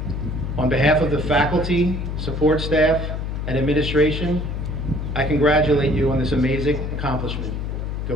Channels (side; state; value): left; noise; hum, 3 dB below the sound